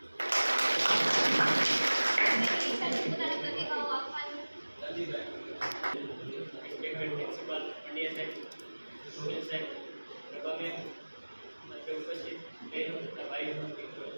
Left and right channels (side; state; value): both; inverted; correlation -1.00